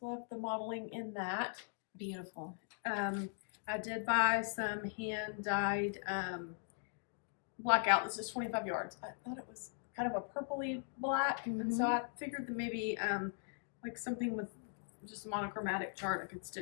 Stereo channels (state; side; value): silent; right; digital silence